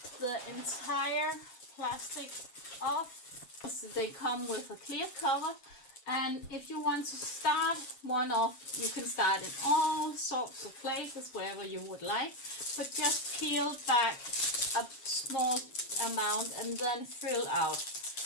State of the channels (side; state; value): right; late; 7.4 ms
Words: the entire plastic off. So they come with a clear cover, and if you want to start one off, you can start in all sorts of places wherever you would like, but just peel back a small amount and then fill out.